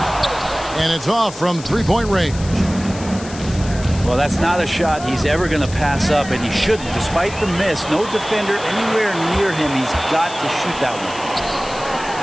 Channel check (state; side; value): noise; left; hiss, 15 dB below the sound